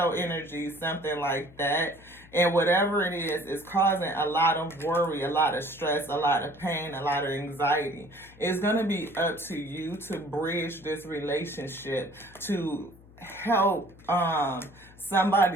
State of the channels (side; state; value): left; noise; hum, 24 dB below the sound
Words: energy, something like that. And whatever it is causing a lot of worry, a lot of stress, a lot of pain, a lot of anxiety. It's going to be up to you to bridge this relationship, to help